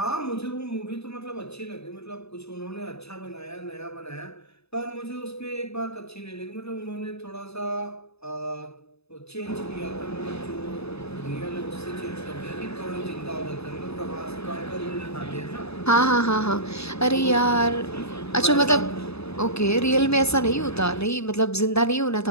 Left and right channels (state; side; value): late; right; 0.79 ms